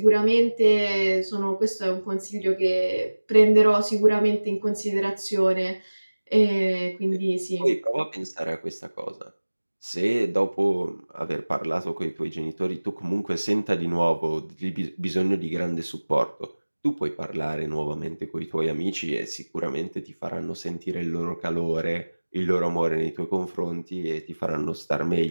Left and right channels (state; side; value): inverted; both; correlation -1.00